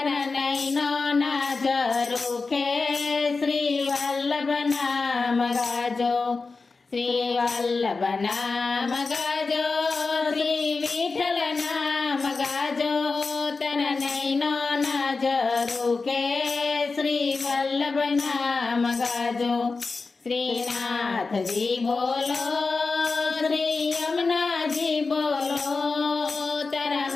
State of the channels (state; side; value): quieter; right; 4.1 dB